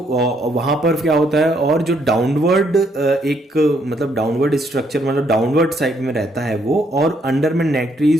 पर क्या होता है, और जो डाउनवर्ड एक मतलब डाउनवर्ड स्ट्रक्चर मतलब डाउनवर्ड साइड में रहता है वो, और अंडर में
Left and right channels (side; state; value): both; normal; correlation 0.71